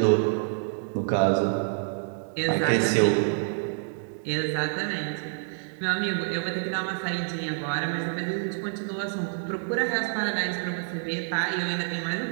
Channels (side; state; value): left; silent; digital silence